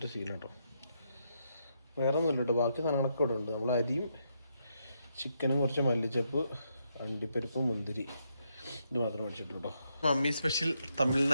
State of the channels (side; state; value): both; inverted; correlation -0.79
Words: ശീലട്ടോ. വേറെ ഒന്നുമില്ല കേട്ടോ, ബാക്കി സാധനങ്ങളൊക്കെ ഇവിടെ ഉണ്ട്. നമ്മൾ അരിയും ചിക്കനും കുറച്ച് മല്ലിച്ചപ്പ്, അണ്ടിപ്പരിപ്പ്, മുന്തിരി, ഇത് മാത്രം മേടിച്ചിട്ടുള്ളൂ കേട്ടോ. Mummy special